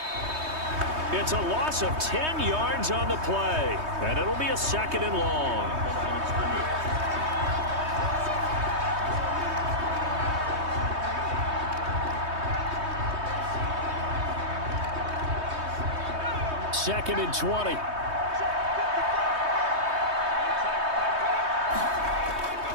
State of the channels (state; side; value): late; left; 3.2 ms